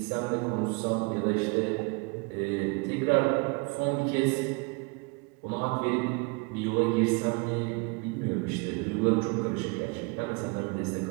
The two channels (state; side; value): quieter; left; 30.4 dB